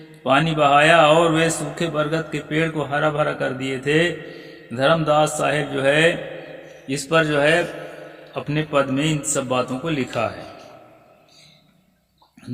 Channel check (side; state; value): both; identical; correlation 1.00